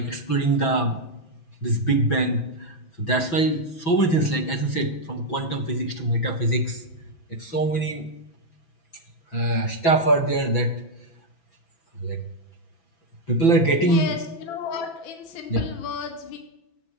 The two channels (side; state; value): right; late; 6.0 ms